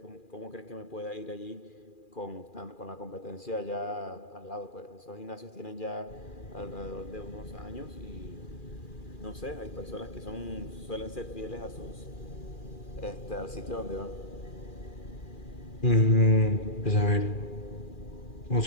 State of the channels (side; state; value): right; late; 2.4 ms